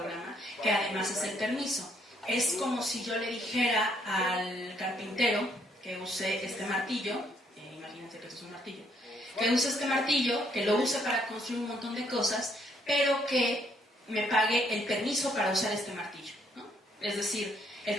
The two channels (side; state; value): both; normal; correlation 0.69